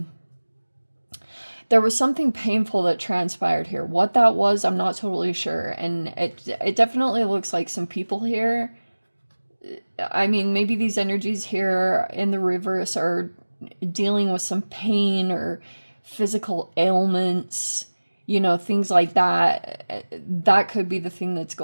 was something painful that transpired here. What that was, I'm not totally sure, and it definitely looks like some people here. I mean, maybe these energies here in the reverse are dealing with some pain or physical ailments, things like that. That could be the thing that's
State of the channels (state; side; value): inverted; both; correlation -1.00